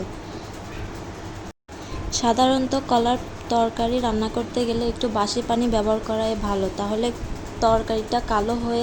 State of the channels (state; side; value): identical; both; correlation 1.00